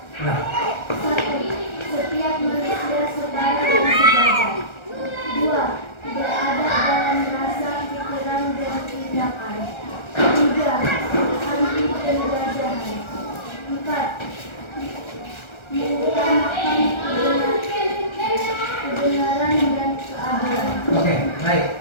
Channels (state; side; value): late; right; 1.3 ms